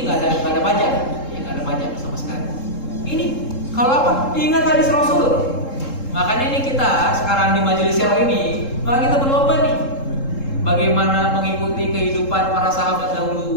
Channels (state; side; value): late; right; 3.7 ms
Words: nggak ada pajak, ya nggak ada pajak sama sekali. Ini kalau apa? Ingat hadis Rasul. Makanya ini kita sekarang di majelis Syaro ini, maka kita berlomba nih, bagaimana mengikuti kehidupan para sahabat